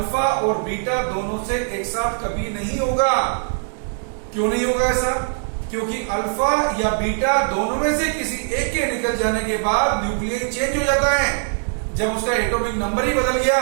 और बीटा दोनों से एक साथ कभी नहीं होगा। क्यों नहीं होगा ऐसा, क्योंकि अल्फा या बीटा दोनों में से किसी एक के निकल जाने के बाद न्यूक्लियस चेंज हो जाता है। जब उसका एटॉमिक नंबर ही बदल गया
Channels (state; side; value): silent; left; 65 dB below the other